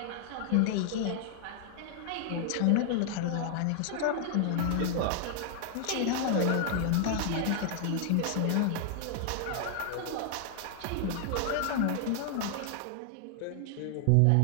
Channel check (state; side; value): different; both; correlation 0.00